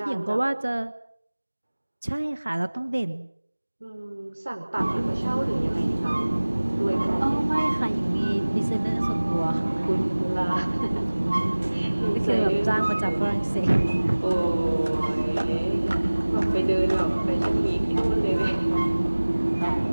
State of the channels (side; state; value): both; inverted; correlation -1.00